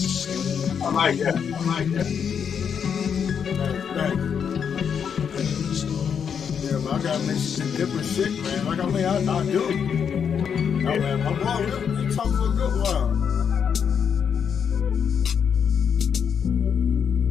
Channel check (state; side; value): quieter; right; 7.3 dB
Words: I like that. I like that. Thanks. Yeah, man, I gotta make some different shit, man. Like, I mean, I do. I mean, my boy, we talked for a good while.